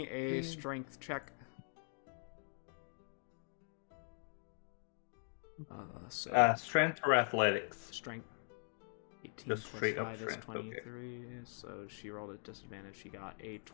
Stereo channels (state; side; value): silent; right; 50 dB below the other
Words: a strength check. Strength or athletics? Strength. 18 Just plus straight up 5 is strength, 23, so she rolled a disadvantage. She got a